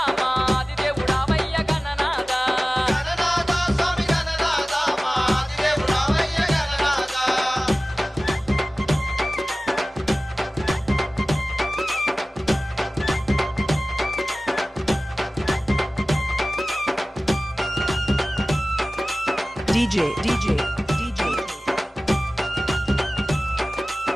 మా ఆదిదేవుడావయ్య గణనాథ గణనాథ స్వామి గణనాథ మా ఆదిదేవుడావయ్య Gananatha DJ DJ DJ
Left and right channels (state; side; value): normal; both; correlation 0.97